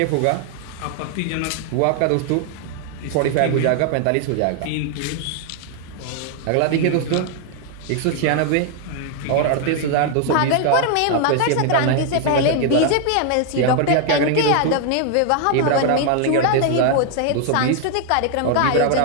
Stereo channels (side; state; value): both; different; correlation 0.00